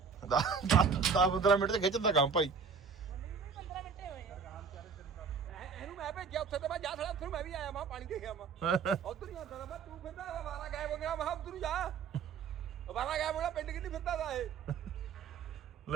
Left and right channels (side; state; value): left; quieter; 5.6 dB